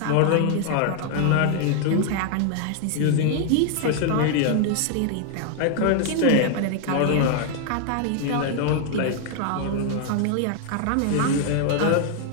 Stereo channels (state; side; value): different; both; correlation 0.00